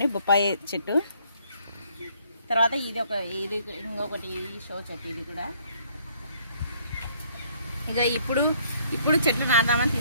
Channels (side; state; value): both; inverted; correlation -0.63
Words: బొప్పాయి చెట్టు. తర్వాత ఇది ఇంకొకటి షో చెట్టు. ఇది కూడా ఇక ఇప్పుడు చెట్లు నాటుదామని